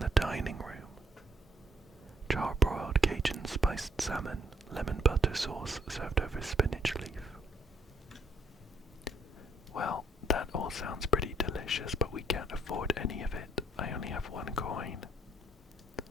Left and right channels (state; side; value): normal; both; correlation 0.66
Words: dining room. Charbroiled Cajun spiced salmon, lemon butter sauce served over spinach leaf. Well, that all sounds pretty delicious, but we can't afford any of it. I only have 1 coin.